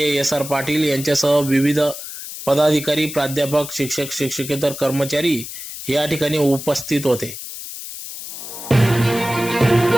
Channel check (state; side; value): noise; left; hiss, 10 dB below the sound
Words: SR पाटील यांच्यासह विविध पदाधिकारी, प्राध्यापक, शिक्षक, शिक्षकेतर कर्मचारी या ठिकाणी उपस्थित होते।